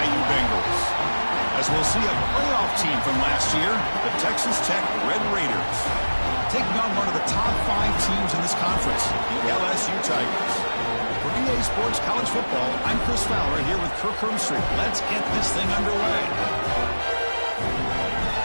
Bengals. As we'll see a playoff team from last year, the Texas Tech Red Raiders, taking on one of the top 5 teams in this conference, the LSU Tigers. For EA Sports College Football, I'm Chris Fowler here with Kirk Herbstreit. Let's get this thing underway.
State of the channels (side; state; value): both; inverted; correlation -1.00